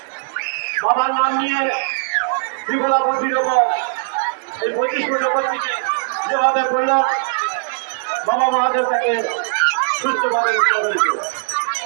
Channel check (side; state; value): left; silent; 66 dB below the other